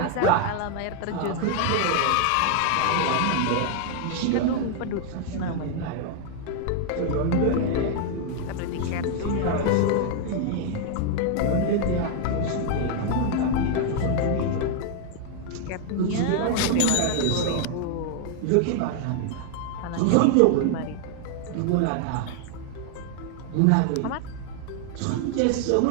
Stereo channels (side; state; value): both; different; correlation 0.00